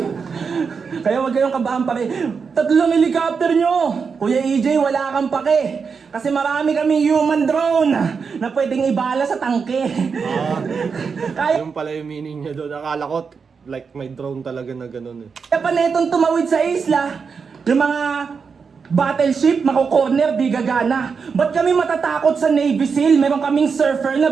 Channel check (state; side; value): quieter; left; 5.6 dB